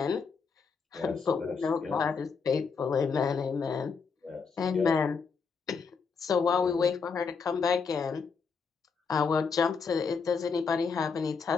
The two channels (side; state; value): right; quieter; 5.4 dB